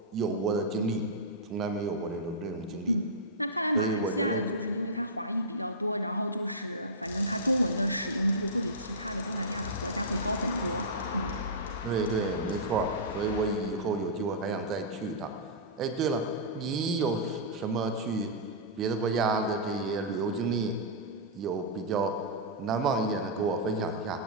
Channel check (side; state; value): both; normal; correlation -0.15